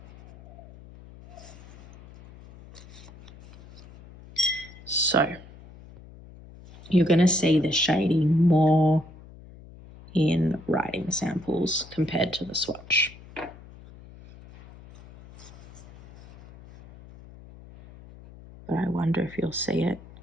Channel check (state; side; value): noise; left; hum, 20 dB below the sound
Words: So you're going to see the shading more in writing samples compared to the swatch. But I wonder if you'll see it